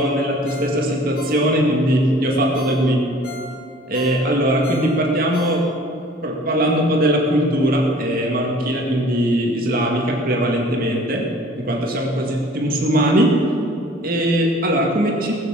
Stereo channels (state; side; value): normal; both; correlation 0.50